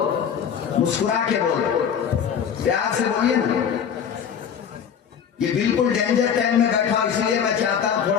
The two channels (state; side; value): quieter; right; 7.8 dB